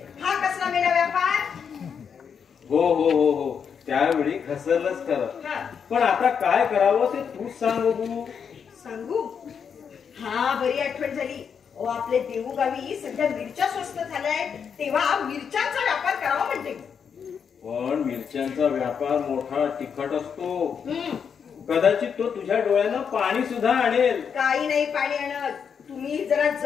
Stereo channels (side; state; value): right; quieter; 6.9 dB